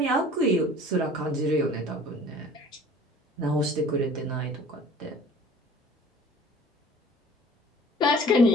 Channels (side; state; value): both; normal; correlation 0.48